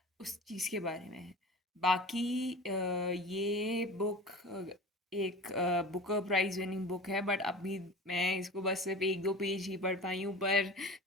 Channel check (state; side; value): normal; both; correlation 0.36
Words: उस चीज़ के बारे में है। बाकी ये बुक एक बुकर प्राइज़ विनिंग बुक है, बट अभी मैं इसको बस सिर्फ एक दो पेज ही पढ़ पाई हूँ, पर